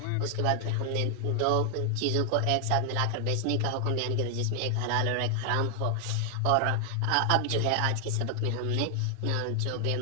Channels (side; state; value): both; different; correlation 0.00